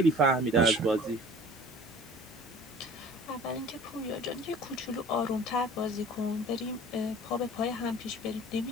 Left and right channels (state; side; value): normal; both; correlation 0.46